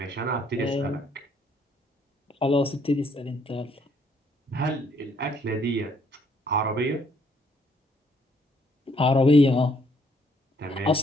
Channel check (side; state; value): both; normal; correlation 0.67